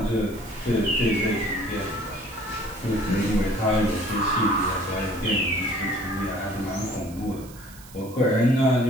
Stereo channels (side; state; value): right; noise; hiss, 21 dB below the sound